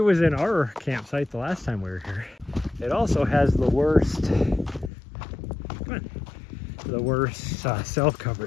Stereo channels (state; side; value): drops out; right; at 4.9 s